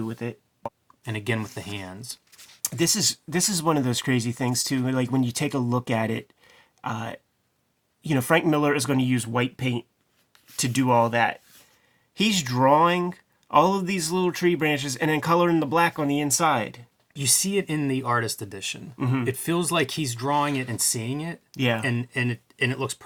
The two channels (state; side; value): identical; both; correlation 1.00